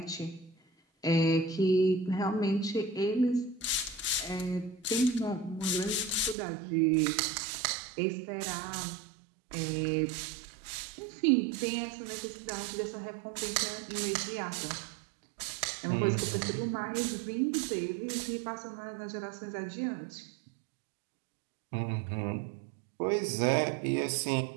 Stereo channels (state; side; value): drops out; left; at 6.4 s